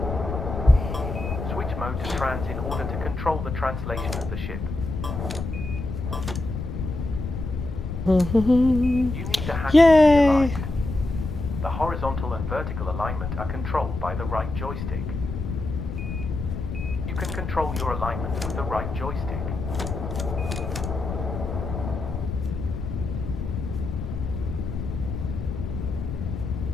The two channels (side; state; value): left; noise; rumble, 5 dB below the sound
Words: Switch mode to trans in order to control the translation of the ship. You need the hatches to be Yay! aligned. The horizontal and vertical alignment are controlled by the right joystick. You can control your alignment with the right joystick.